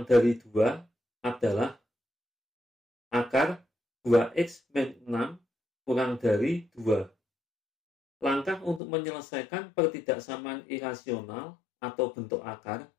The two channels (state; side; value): drops out; right; at 8.8 s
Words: dari 2 adalah akar 2x min 6 kurang dari 2. Langkah untuk menyelesaikan pertidaksamaan irasional atau bentuk akar